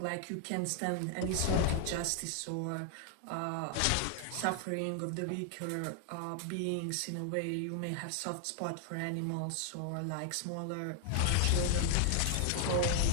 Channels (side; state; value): both; different; correlation 0.00